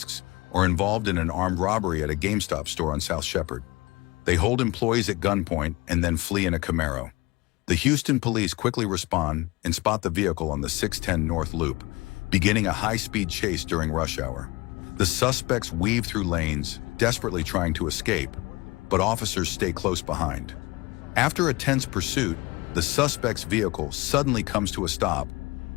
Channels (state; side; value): quieter; right; 23.1 dB